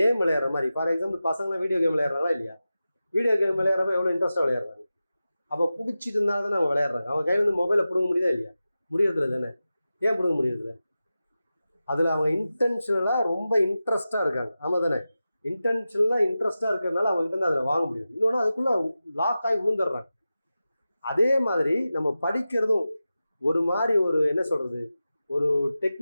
விளையாடுற மாதிரி. ஃபார் எக்ஸாம்பிள் பசங்களாம் வீடியோ கேம் விளையாடுறாங்களா இல்லையா? வீடியோ கேம் விளையாடுறப்ப எவ்வளோ இன்ட்ரெஸ்ட்டாக விளையாடுறாங்க. அப்போ பிடிச்சிட்டு இருந்தால் தானே அவங்க விளையாடுறாங்க. அவன் கையிலேருந்து மொபைலை பிடுங்க முடியுதா இல்லையா? முடியறதில்ல தானே. ஏன் பிடுங்க முடியறதில்ல? அதில் அவங்க இன்டென்ஷனலாக ரொம்ப இன்ட்ரெஸ்ட்டாக இருக்காங்க. ஆமாம் தானே. இன்டென்ஷனலாக இன்ட்ரெஸ்ட்டாக இருக்கிறதுனால அவங்ககிட்ட இருந்து அதில் வாங்க முடியும். இன்னொன்று அதுக்குள்ளே லாக் ஆகி விழுந்துடுறாங்க. அதே மாதிரி நம்ம படிக்கிறதும் ஒரு மாதிரி ஒரு என்ன சொல்கிறது, ஒரு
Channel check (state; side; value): inverted; both; correlation -0.93